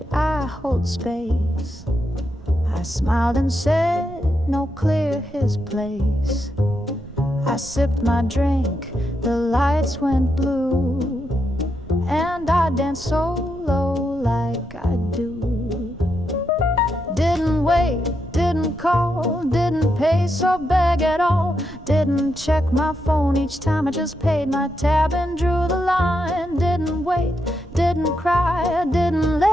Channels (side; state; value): right; noise; rumble, 19 dB below the sound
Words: I hold space? I smiled and said, no, clear his place. I sipped my drink, the lights went blue, and I danced solo like I do. Didn't wait, didn't call, didn't pay or beg at all. Didn't check my phone each time, I just paid my tab and drew the line. Didn't wait, didn't cry, didn't